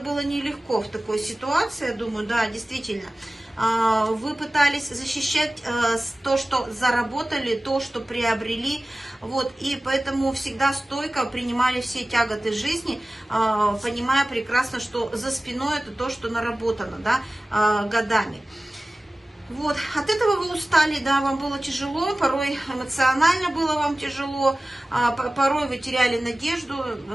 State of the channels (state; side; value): normal; both; correlation 0.97